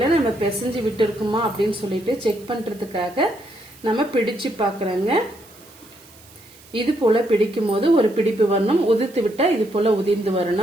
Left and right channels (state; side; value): noise; right; hiss, 24 dB below the sound